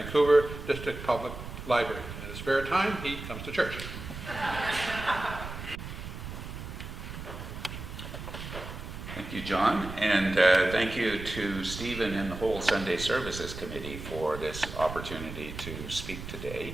District Public Library. In his spare time, he comes to church. Thank you, John, and thank you to Stephen and the whole Sunday Services Committee for this opportunity to speak today.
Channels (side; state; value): right; noise; rumble, 9 dB below the sound